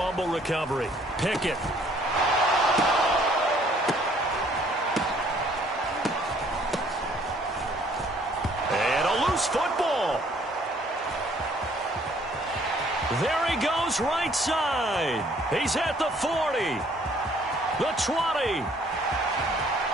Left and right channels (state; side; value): normal; both; correlation 0.61